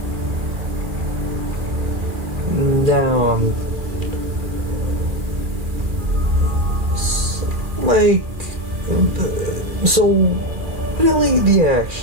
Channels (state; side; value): late; left; 2.4 ms